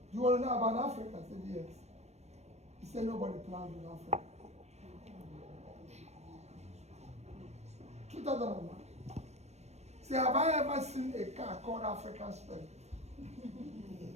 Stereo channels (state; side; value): late; left; 0.32 ms